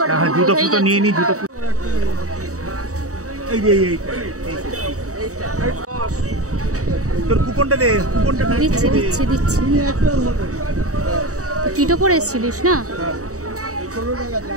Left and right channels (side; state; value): left; late; 0.65 ms